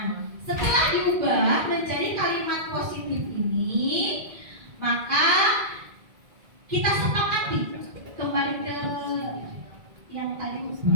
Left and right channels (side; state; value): left; late; 2.0 ms